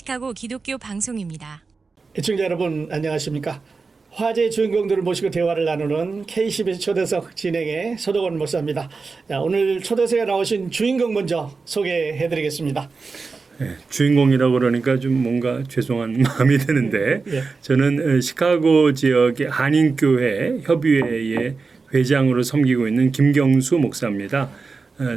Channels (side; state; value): left; quieter; 4.4 dB